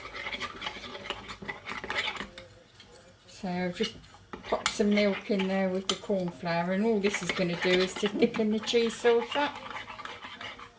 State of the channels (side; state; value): both; identical; correlation 1.00